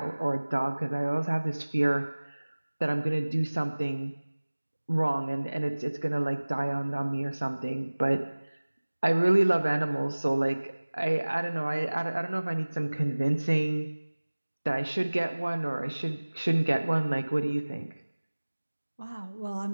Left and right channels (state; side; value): inverted; both; correlation -1.00